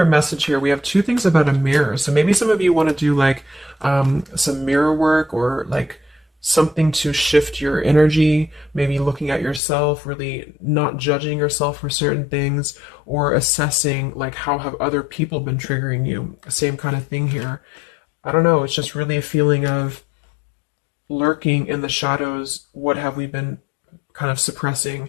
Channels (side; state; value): right; drops out; at 9.6 s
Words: message here. We have two things about a mirror. So maybe some of you want to do like some mirror work, or like something to shift your energy, maybe looking at yourself, really not judging yourself for certain things, or assessing like how have other people been triggering you. Same kind of thing here. I don't know, it's just really a feeling of lurking in the shadows. What have we been kind of